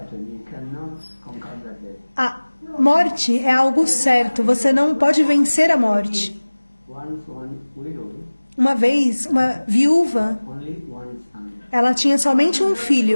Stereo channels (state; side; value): inverted; both; correlation -1.00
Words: You cannot conquer that death. A morte é algo certo. Você não pode vencer a morte. Once one widow, Uma vez, uma viúva, only one son. ela tinha somente um